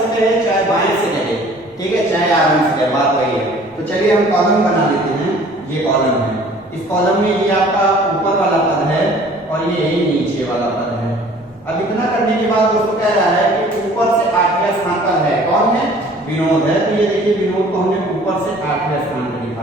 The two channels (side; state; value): both; normal; correlation 0.51